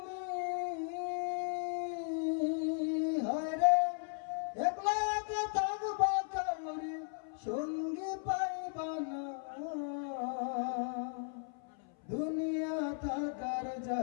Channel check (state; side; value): silent; right; 54 dB below the other